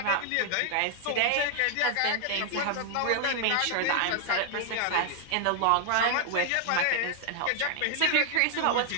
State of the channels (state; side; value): different; both; correlation 0.00